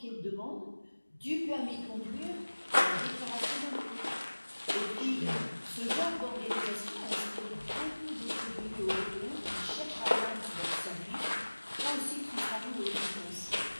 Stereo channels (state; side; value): inverted; both; correlation -1.00